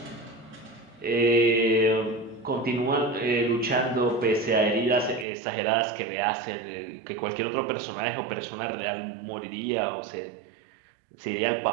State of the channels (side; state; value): left; drops out; at 5.2 s